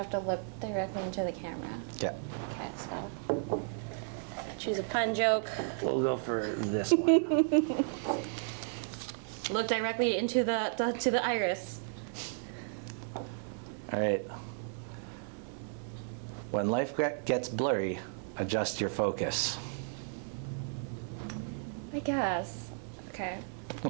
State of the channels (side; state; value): left; silent; digital silence